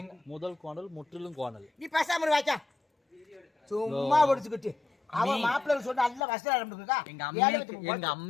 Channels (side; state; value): right; drops out; at 6.2 s